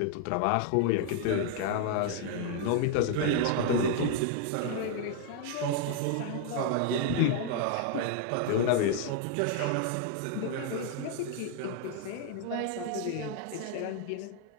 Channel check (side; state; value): both; different; correlation 0.00